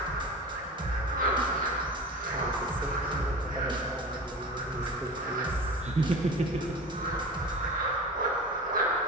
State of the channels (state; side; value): normal; both; correlation 0.33